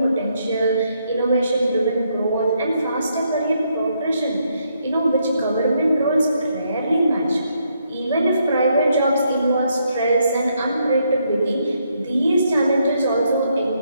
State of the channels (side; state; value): both; inverted; correlation -0.75